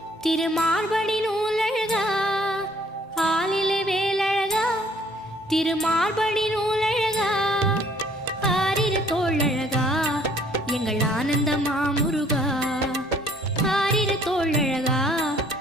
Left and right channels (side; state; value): both; normal; correlation 0.60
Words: திருமார்படி நூலழகா ஆலிலே வேலழகா திருமார்படி நூலழகா ஆரிரு தோழழகா எங்கள் ஆனந்த மாமுருகா ஆரிரு தோழழகா